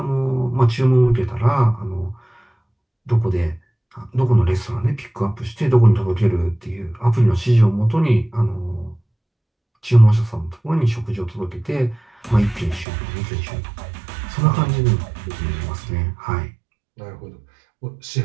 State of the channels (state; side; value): drops out; left; at 12.9 s